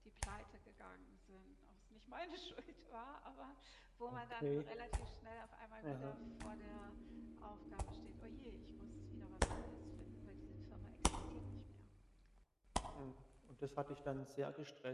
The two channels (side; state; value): both; identical; correlation 1.00